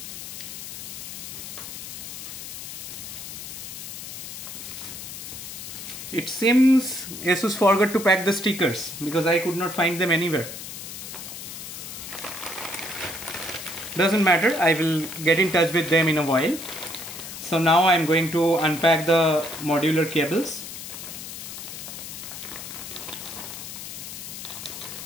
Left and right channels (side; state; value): left; noise; hiss, 9 dB below the sound